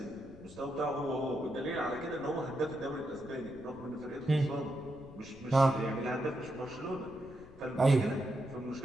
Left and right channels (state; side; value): noise; left; rumble, 21 dB below the sound